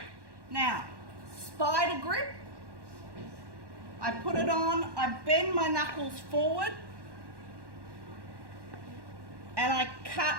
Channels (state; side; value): late; left; 1.1 ms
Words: Now, spider grip. I put it on, I bend my knuckles forward, and I